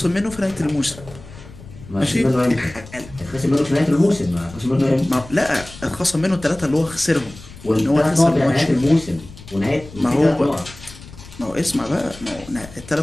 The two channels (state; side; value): noise; left; rumble, 18 dB below the sound